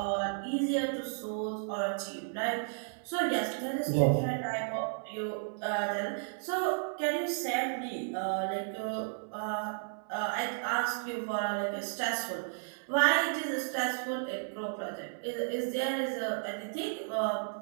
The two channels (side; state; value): left; silent; 56 dB below the other